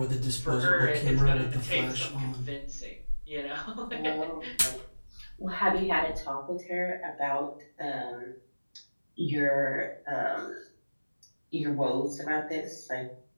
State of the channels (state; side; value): inverted; both; correlation -1.00